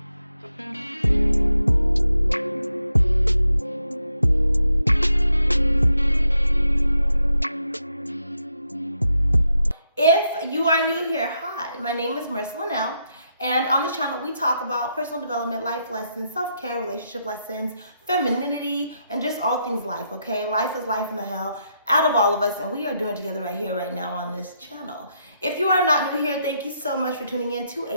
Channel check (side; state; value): both; inverted; correlation -0.81